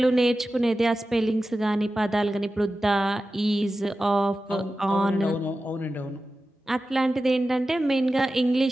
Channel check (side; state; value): both; normal; correlation 0.94